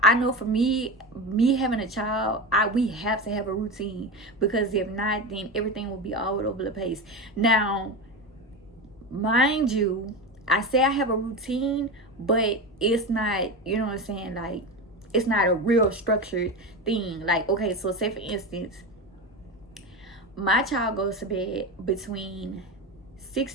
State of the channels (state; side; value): normal; both; correlation 0.22